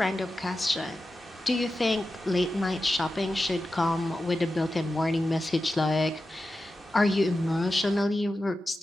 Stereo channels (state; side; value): normal; both; correlation 0.92